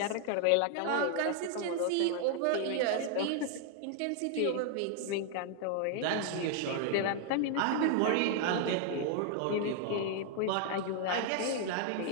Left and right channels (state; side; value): different; both; correlation 0.00